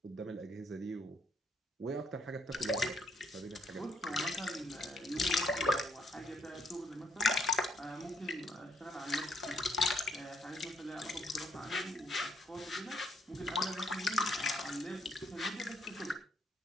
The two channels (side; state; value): both; normal; correlation 0.72